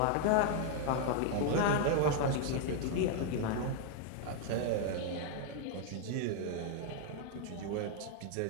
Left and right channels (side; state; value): both; different; correlation 0.00